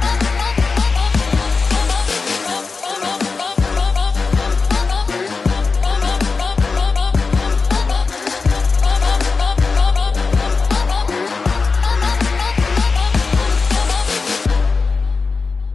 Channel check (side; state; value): right; quieter; 4.4 dB